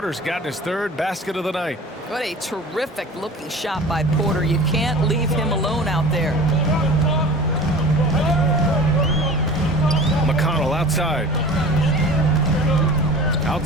gotten his 3rd basket of the night. What a terrific looking shot by Porter. You can't leave him alone out there. McConnell outside.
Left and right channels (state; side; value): normal; both; correlation 0.39